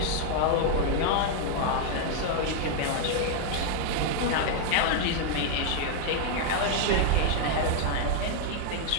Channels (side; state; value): both; different; correlation 0.00